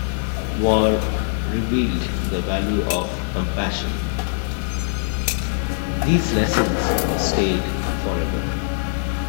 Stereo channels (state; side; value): silent; right; digital silence